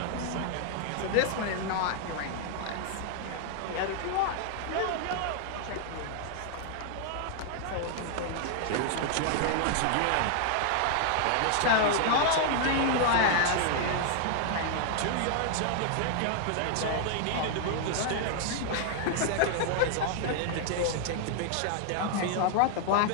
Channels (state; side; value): different; both; correlation 0.00